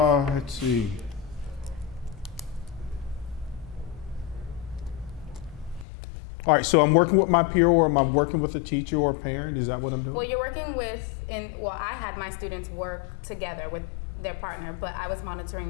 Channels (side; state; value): right; drops out; at 5.9 s